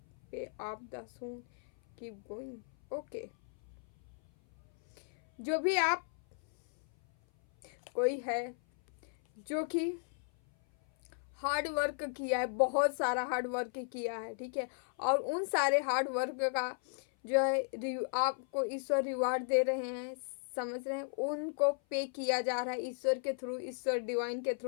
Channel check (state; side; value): silent; right; 54 dB below the other